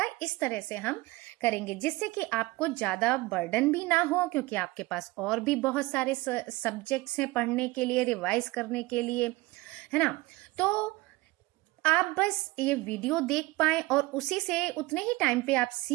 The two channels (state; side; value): quieter; left; 21.3 dB